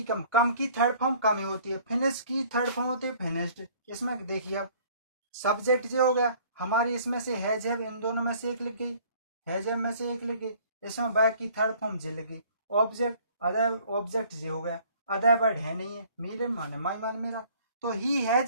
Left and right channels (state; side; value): inverted; both; correlation -0.54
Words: कम की थर्ड फॉर्म कम ही होती है, फिनिश की थर्ड फॉर्म होती है फिनिश्ड। इसमें देखिए अब सब्जेक्ट जो हो गया हमारी, इसमें से हैज हैव इन दोनों में से एक लिख गई, हैज हैव में से एक लिख गई, इसमें बैक की थर्ड फॉर्म जे लिख गई। ऑब्जेक्ट अदर ऑब्जेक्ट जे हो गया, अदर वर्ड है नहीं है, मेरे माने माई मान मेरा। तो ही